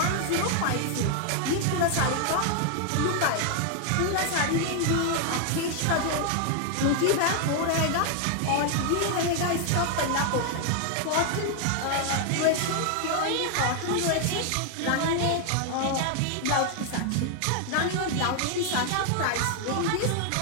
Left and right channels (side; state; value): both; different; correlation 0.00